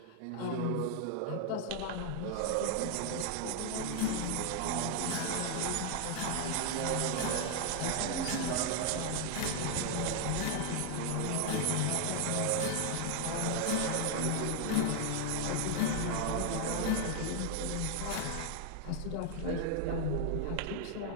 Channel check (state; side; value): different; both; correlation 0.00